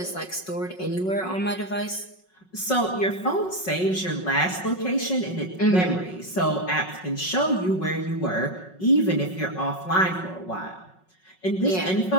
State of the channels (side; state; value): right; late; 5.4 ms